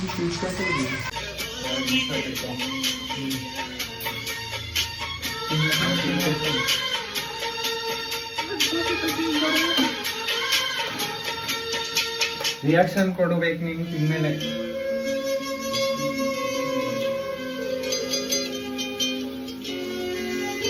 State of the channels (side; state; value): both; identical; correlation 1.00